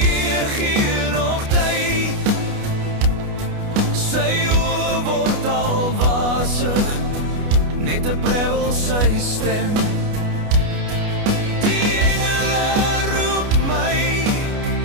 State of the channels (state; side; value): late; left; 29 ms